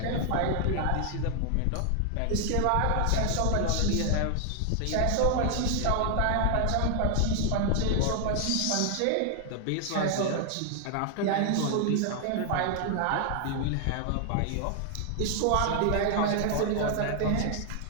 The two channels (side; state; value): both; different; correlation 0.00